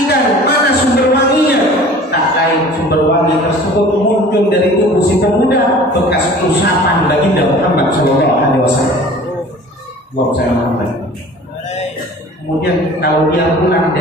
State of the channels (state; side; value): normal; both; correlation 0.45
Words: ikan, mana sumber wanginya. Tak lain sumber wangi tersebut muncul dari tubuh si pemuda, bekas usapan baginda Muhammad Sallallahu Alaihi Wasallam. Buat saya Muhammad. Kemudian kalau dia pulang